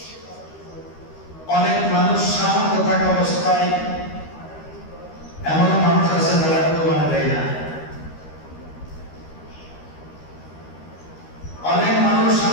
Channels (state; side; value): late; right; 13 ms